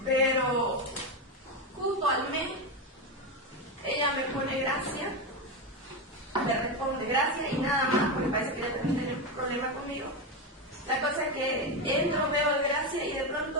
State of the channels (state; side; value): normal; both; correlation 0.13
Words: Pero justo al mes, ella me pone gracia, le responde gracia y nada más, porque parece que ella también tiene un problema conmigo. La cosa es que entro, veo el gracia y de